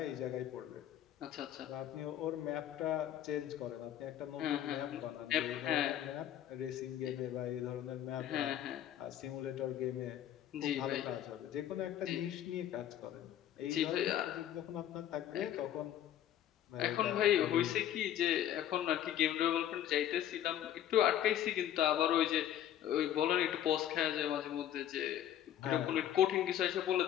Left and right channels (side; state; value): right; quieter; 11.3 dB